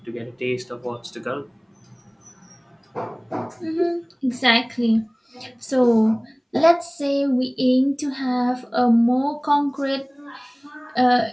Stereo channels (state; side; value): identical; both; correlation 1.00